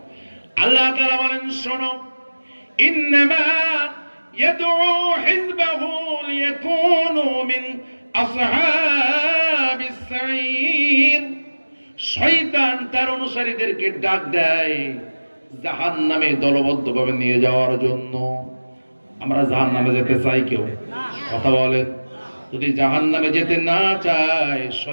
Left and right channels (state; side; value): inverted; both; correlation -1.00